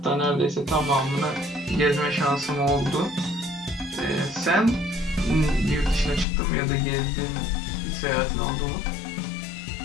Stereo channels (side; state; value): right; drops out; at 6.2 s